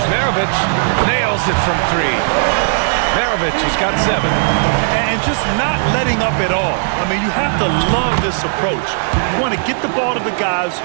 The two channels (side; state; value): left; silent; digital silence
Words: Maravici, nails it from 3. Maravici has got 7. And just not letting up at all. I mean, you have to love this approach. You want to get the ball to the guys